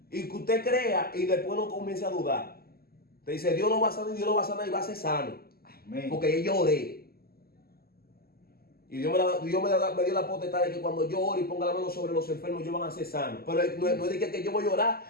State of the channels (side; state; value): right; late; 0.45 ms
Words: Y que usted crea y después no comience a dudar. Te dice, Dios no va a sanar, Dios no va a sanar y va a ser sano. Amén. Porque yo oré. Y Dios me dio la potestad de que cuando yo ore y ponga la mano sobre los enfermos, ellos van a ser sanos. Pero no es de que yo voy a orar,